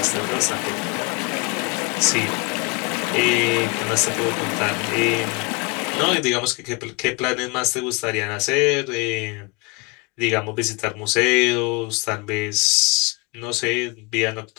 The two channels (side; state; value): right; quieter; 27.1 dB